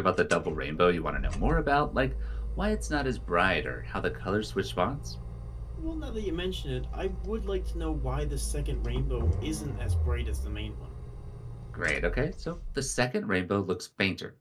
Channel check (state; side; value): identical; both; correlation 1.00